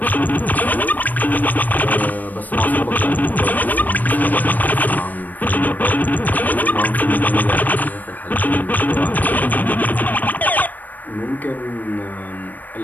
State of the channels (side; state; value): right; late; 0.084 ms